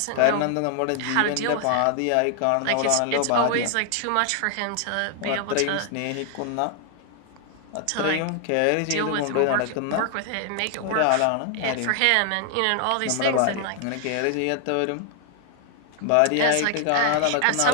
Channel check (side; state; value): both; different; correlation 0.00